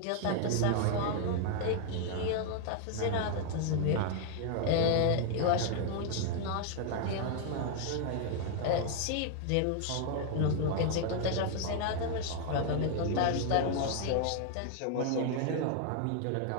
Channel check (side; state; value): both; different; correlation 0.00